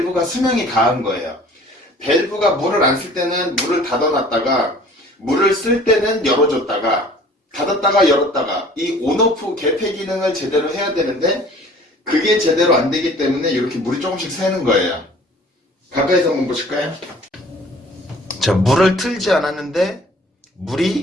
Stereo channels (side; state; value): both; normal; correlation 0.50